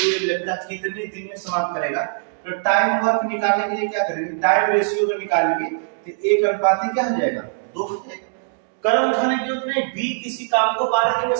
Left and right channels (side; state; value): left; silent; digital silence